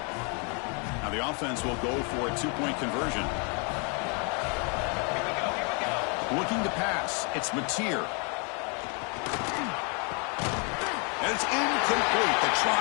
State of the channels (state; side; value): quieter; right; 36.0 dB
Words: Now the offense will go for a 2-point conversion. Looking to pass. It's Mateer. And it's incomplete. The